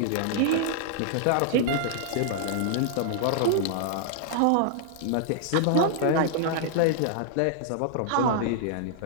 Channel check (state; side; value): different; both; correlation -0.01